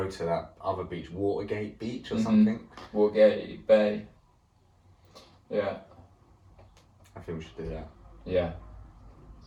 to that other beach, Watergate Beach or something. Watergate Bay. Yeah. I think we should do that. Yeah.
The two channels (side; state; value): both; identical; correlation 1.00